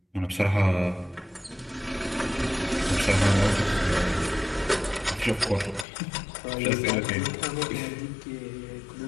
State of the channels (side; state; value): right; drops out; at 5.9 s